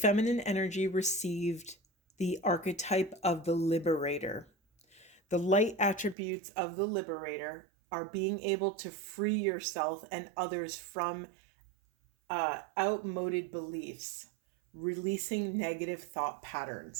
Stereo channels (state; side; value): drops out; left; at 6.2 s